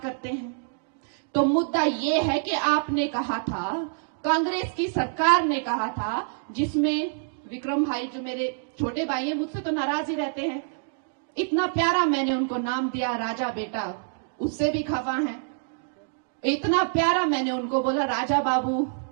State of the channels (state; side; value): silent; left; digital silence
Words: हैं। तो मुद्दा ये है कि आपने कहा था, कांग्रेस की सरकार ने कहा था, जिसमें विक्रम भाई जो मेरे छोटे भाई हैं, मुझसे तो नाराज ही रहते हैं, इतना प्यारा मैंने उनको नाम दिया राजा बेटा, उससे भी खफा है। इतना प्यारा मैंने उनको बोला राजा बाबू,